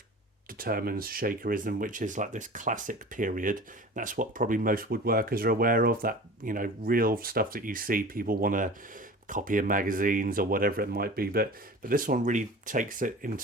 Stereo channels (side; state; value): both; normal; correlation 0.38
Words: determines shakerism, which is like this classic period. That's what probably most woodworkers are aware of, that, you know, real stuff that you see people want to copy in magazines or whatever it might be, but this one really takes it